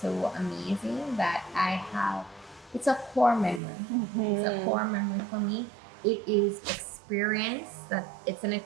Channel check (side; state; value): left; drops out; at 3.6 s